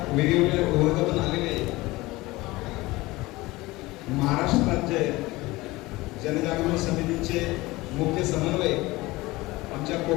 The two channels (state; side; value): quieter; right; 20.4 dB